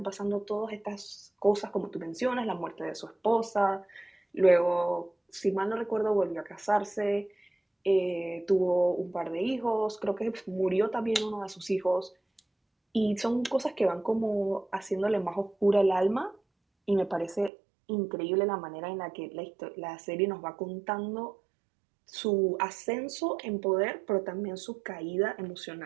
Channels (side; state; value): left; drops out; at 17.5 s